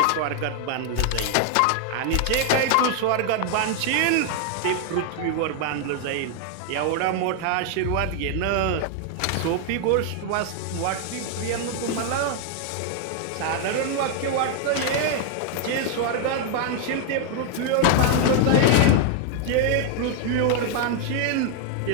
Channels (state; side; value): different; both; correlation 0.00